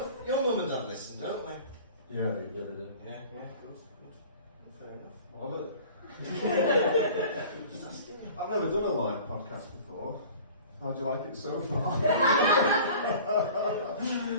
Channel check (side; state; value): both; inverted; correlation -0.44